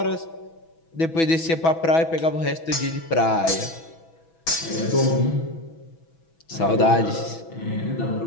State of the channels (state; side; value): late; right; 6.1 ms